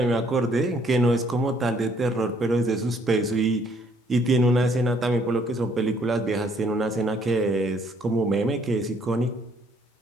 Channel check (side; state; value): both; normal; correlation 0.65